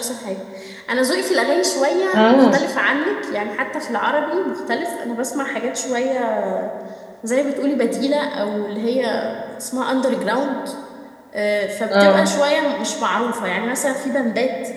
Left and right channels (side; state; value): both; identical; correlation 1.00